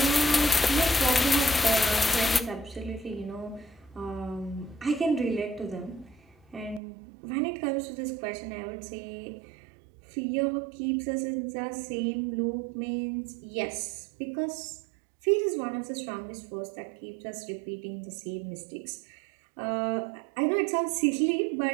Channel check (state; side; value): drops out; left; at 6.8 s